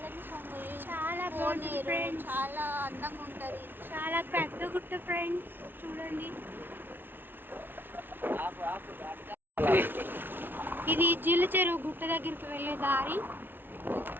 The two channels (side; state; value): left; late; 0.099 ms